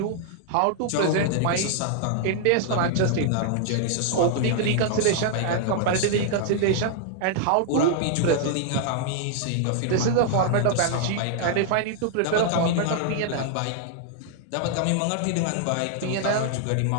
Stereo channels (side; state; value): both; different; correlation 0.00